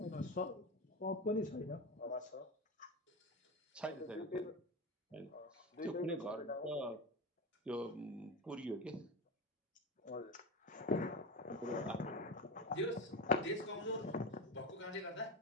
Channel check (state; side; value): normal; both; correlation 0.22